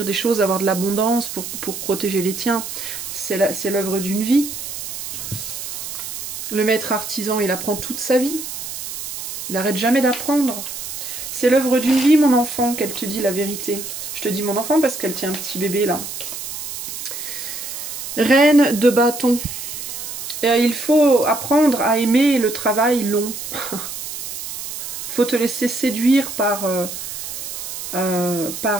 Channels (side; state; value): right; noise; hiss, 7 dB below the sound